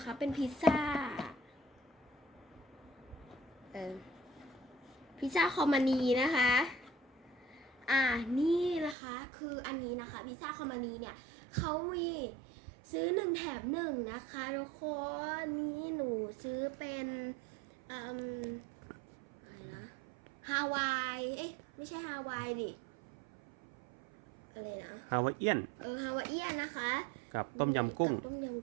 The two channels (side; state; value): left; drops out; at 9.0 s